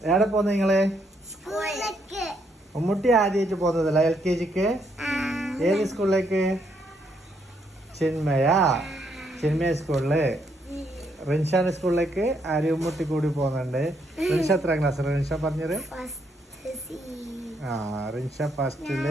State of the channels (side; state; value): both; normal; correlation 0.74